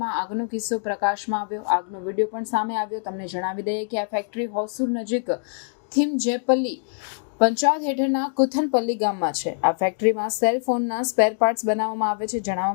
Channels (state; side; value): silent; right; digital silence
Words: આગનો કિસ્સો પ્રકાશમાં આવ્યો। આગનો વિડીયો પણ સામે આવ્યો। તમને જણાવી દઈએ કે આ ફેક્ટરી હોસુર નજીક થિમજેપલ્લી પંચાયત હેઠળના કુથનપલ્લી ગામમાં છે। આ ફેક્ટરીમાં સેલ ફોનના સ્પેર પાર્ટ્સ બનાવવામાં આવે છે।